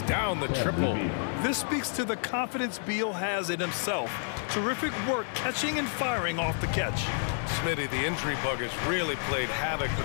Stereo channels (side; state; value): right; silent; 58 dB below the other